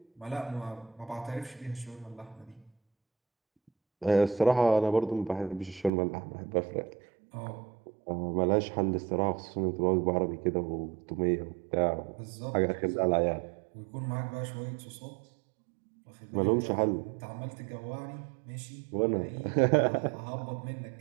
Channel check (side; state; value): left; drops out; at 5.9 s